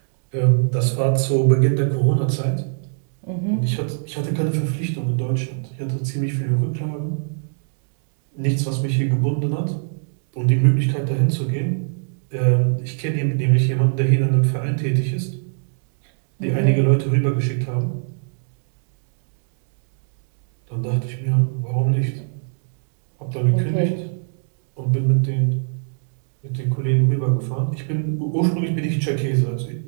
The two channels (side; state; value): left; silent; digital silence